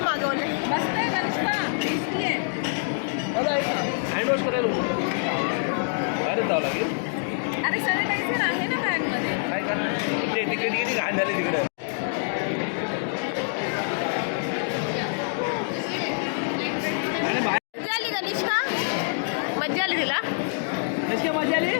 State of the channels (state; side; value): silent; right; digital silence